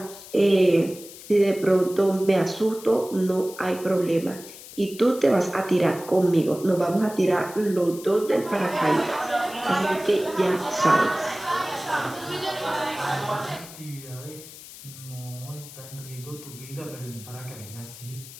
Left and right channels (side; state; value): left; noise; hiss, 16 dB below the sound